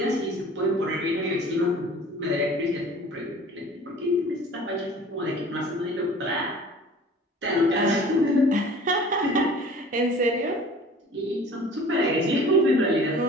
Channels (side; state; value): both; normal; correlation 0.46